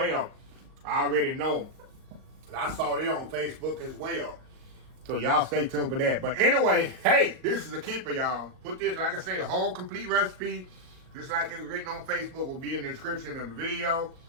I already know. I saw it on Facebook as well. So y'all stay tuned for that. But anyway, hey, this is a keeper, y'all. Put this, like I say, the whole complete recipe, just like it was written on Facebook, will be in the description of the video.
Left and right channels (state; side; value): late; left; 38 ms